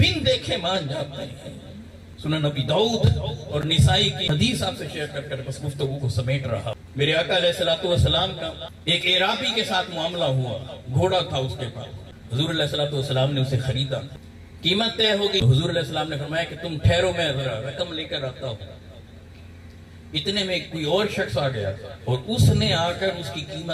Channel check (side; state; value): both; identical; correlation 1.00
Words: دیکھے مان جاتے ہیں. سنن ابی داؤد اور نسائی کی حدیث آپ سے شیئر کر کر بس گفتگو کو سمیٹ رہا. میرے آقا علیہ السلام کا ایک عرابی کے ساتھ معاملہ ہوا. گھوڑا تھا اس کے پاس. حضور علیہ السلام نے اسے خریدا. قیمت طے ہو گئی. حضور علیہ السلام نے فرمایا کہ تم ٹھہرو، میں ذرا رقم لے کر آتا ہوں. اتنے میں کوئی اور شخص آ گیا اور اس نے آ کر اس کی